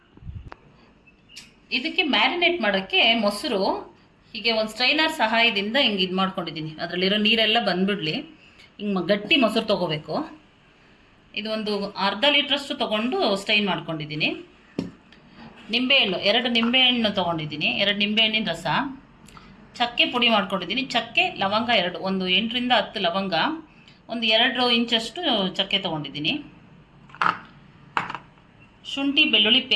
ಇದಕ್ಕೆ ಮ್ಯಾರಿನೇಟ್ ಮಾಡೋಕ್ಕೆ ಮೊಸರು ಹೀಗೆ ಒಂದು ಸ್ಟ್ರೈನರ್ ಸಹಾಯದಿಂದ ಹಿಂಗೆ ಇದು ಮಾಡ್ಕೊಂಡಿದ್ದೀನಿ. ಅದರಲ್ಲಿರೋ ನೀರೆಲ್ಲ ಬಂದುಬಿಡಲಿ. ಹಿಂಗೆ ಗಟ್ಟಿ ಮೊಸರು ತೊಗೋಬೇಕು. ಇದು ಒಂದು ಅರ್ಧ ಲೀಟ್ರಷ್ಟು ತೊಗೊಂಡು ಸ್ಟೈನ್ ಮಾಡ್ಕೊಂಡಿದ್ದೀನಿ. ನಿಂಬೆಹಣ್ಣು 2 ನಿಂಬೆಹಣ್ಣು ತೊಗೊಂಡಿದ್ದೀನಿ. 2 ನಿಂಬೆಹಣ್ಣಿನ ರಸ, ಚಕ್ಕೆ ಪುಡಿ ಮಾಡ್ಕೊಂಡಿದ್ದೀನಿ. ಚಕ್ಕೆ ಲವಂಗ 2, ಒಂದು 8 ರಿಂದ 10 ಲವಂಗ, ಒಂದು 2 ಇಂಚಷ್ಟು ಚಕ್ಕೆ ತೊಗೊಂಡಿದ್ದೀನಿ. ಶುಂಠಿ ಬೆಳ್ಳುಳ್ಳಿ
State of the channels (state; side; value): identical; both; correlation 1.00